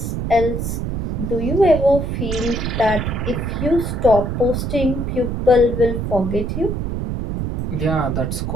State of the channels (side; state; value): right; noise; rumble, 2 dB below the sound